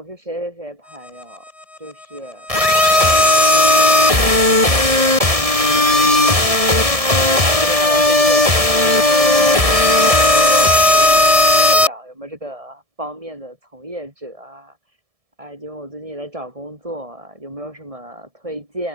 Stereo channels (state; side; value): late; left; 1.7 ms